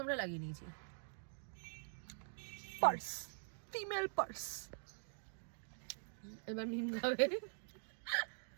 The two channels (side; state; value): left; silent; digital silence